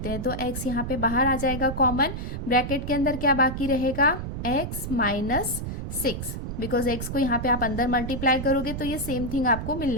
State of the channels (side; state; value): right; noise; rumble, 5 dB below the sound